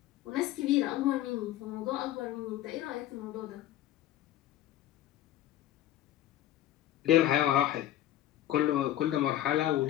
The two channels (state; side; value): quieter; right; 13.4 dB